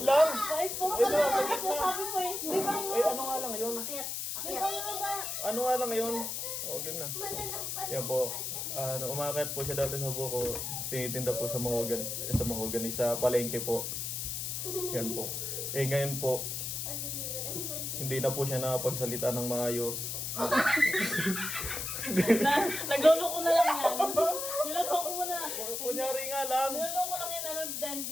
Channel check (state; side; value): noise; left; hiss, 3 dB below the sound